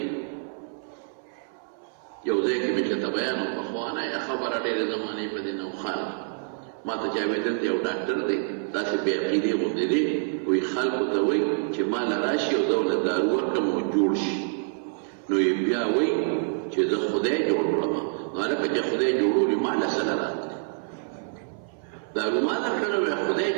یو ځای کې مې چېرته بیان و پخوانه یا خبره ډېرې زمانې په دې نوښانه ما ته چا ویل دلته یو ډاکټر دی داسې بې عقیدې غوندې دی، وایي خلکو ته وایي چې ما له راشي او زه ورله دارو ورکړم نو جوړ شي. نو یې بیا وایي چې زه خدای جوړ کړم. نو هلکه چې خدای جوړولي ما له څه نه راتلی دارو ما درکړی وی خدای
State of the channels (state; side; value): silent; left; 57 dB below the other